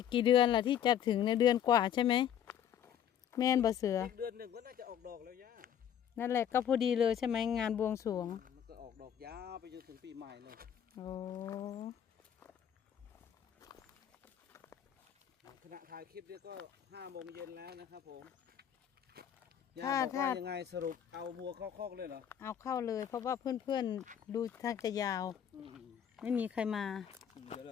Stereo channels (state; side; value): quieter; right; 9.5 dB